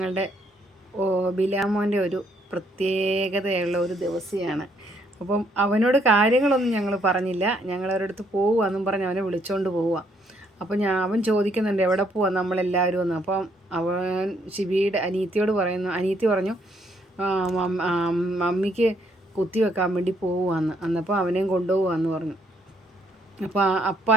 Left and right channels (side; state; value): both; normal; correlation 0.70